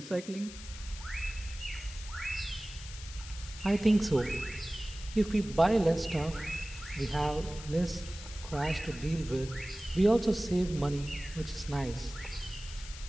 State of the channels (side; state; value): left; noise; hiss, 14 dB below the sound